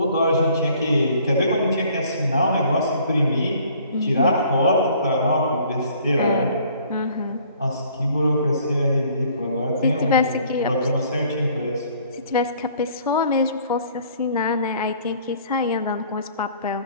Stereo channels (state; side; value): inverted; both; correlation -0.56